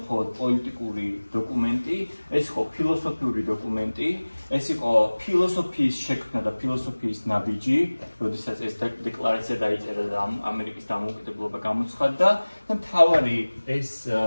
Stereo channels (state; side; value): inverted; both; correlation -1.00